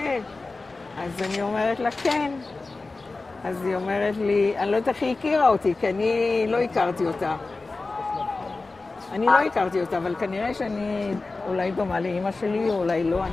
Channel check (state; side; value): quieter; right; 3.6 dB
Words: אז אני אומרת לה, כן. אז היא אומרת לי, אני לא יודעת איך היא הכירה אותי, כי אני לא הכרתי אותה. אבל כנראה שאני אולי דומה לאמא שלי, או אולי לא,